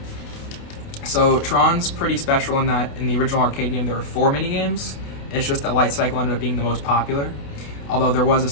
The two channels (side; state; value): right; late; 28 ms